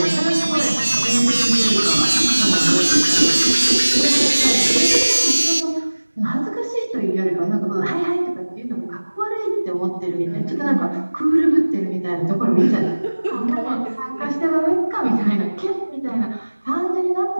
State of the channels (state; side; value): inverted; both; correlation -1.00